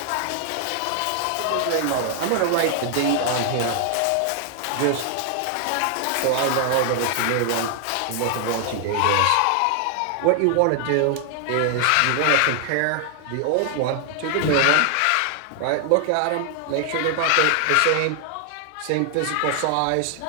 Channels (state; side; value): different; both; correlation 0.00